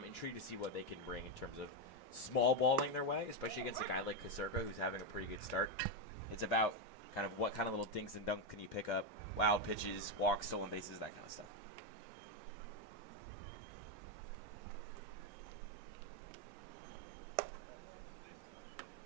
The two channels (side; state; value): both; normal; correlation 0.05